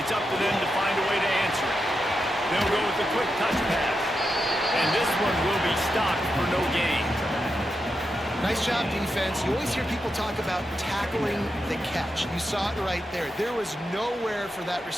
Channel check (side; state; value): both; normal; correlation 0.87